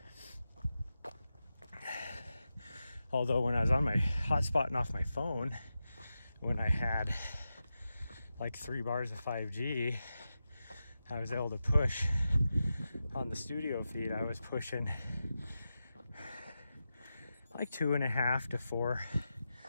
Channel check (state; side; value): inverted; both; correlation -0.90